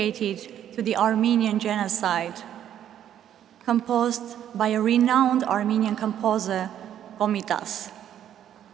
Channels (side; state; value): left; quieter; 10.4 dB